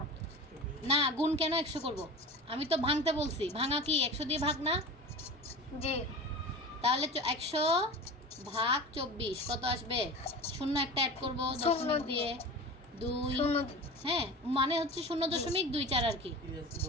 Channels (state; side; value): normal; both; correlation 0.32